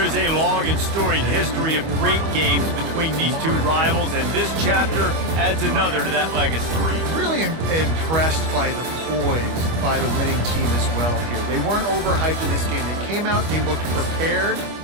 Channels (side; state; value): left; late; 25 ms